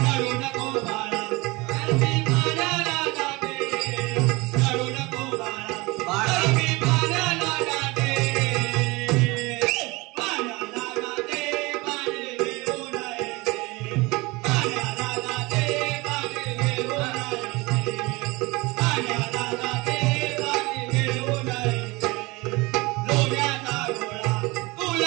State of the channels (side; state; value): left; quieter; 23.9 dB